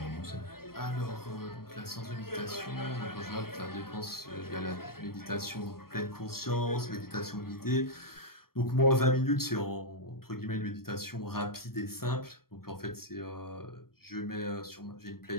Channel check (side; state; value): right; late; 0.94 ms